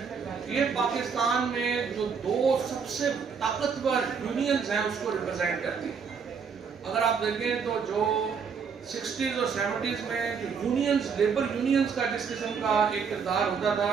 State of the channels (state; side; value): quieter; left; 6.0 dB